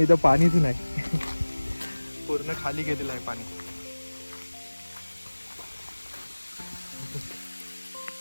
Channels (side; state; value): both; inverted; correlation -1.00